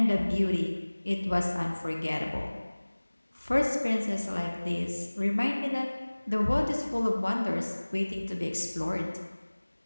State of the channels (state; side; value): inverted; both; correlation -1.00